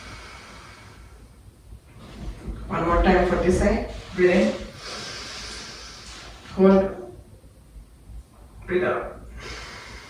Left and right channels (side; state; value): both; identical; correlation 1.00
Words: 5. One more time for this side. Breathe in. Hold. Breathe out.